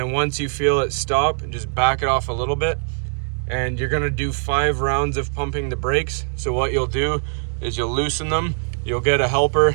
once you feel it stop, just back it off a little bit. And you're gonna do 5 rounds of pumping the brakes. So what you'll do is you'll loosen them, you'll get a helper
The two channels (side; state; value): left; silent; digital silence